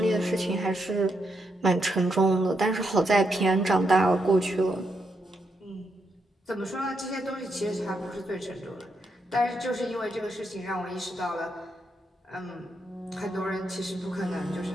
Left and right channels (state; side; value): normal; both; correlation 0.80